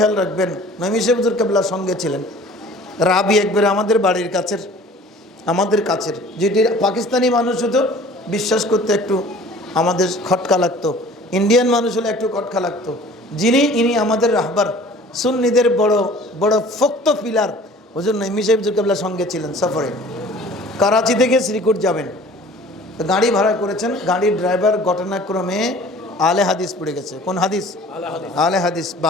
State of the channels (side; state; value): both; normal; correlation 0.47